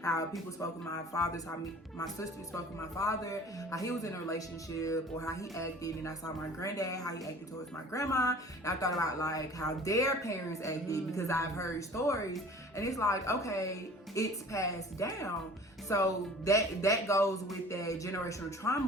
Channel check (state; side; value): normal; both; correlation 0.45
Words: how people spoke with my fathers, how my sister spoke with my father, how he was in a relationship, or how he acted. And I saw my granddad, how he acted towards my grandma. And I thought about like how their parents acted because I've heard stories. And it's like, okay, it's passed down. So that goes with that generational